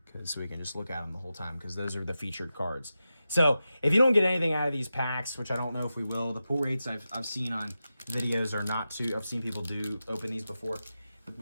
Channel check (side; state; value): both; inverted; correlation -0.91